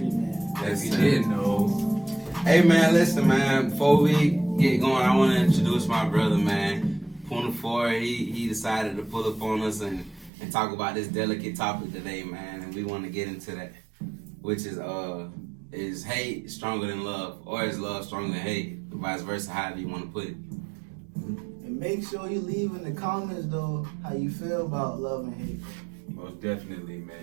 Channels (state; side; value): drops out; left; at 10.3 s